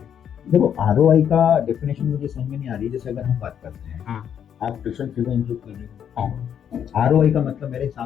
देखो, आरओआई का डेफिनेशन मुझे समझ में नहीं आ रही। जैसे अगर हम बात करते हैं, आप ट्यूशन फीस इंक्लूड कर रहे हो, आरओआई का मतलब मेरे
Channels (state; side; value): quieter; right; 8.8 dB